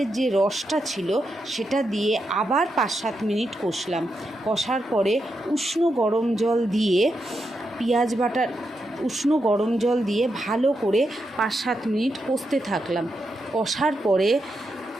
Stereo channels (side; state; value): both; normal; correlation 0.84